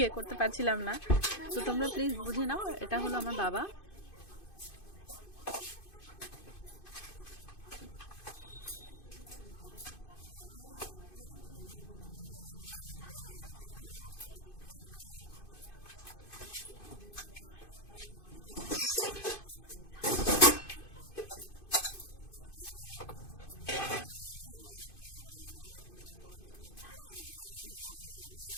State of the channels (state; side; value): late; right; 2.5 ms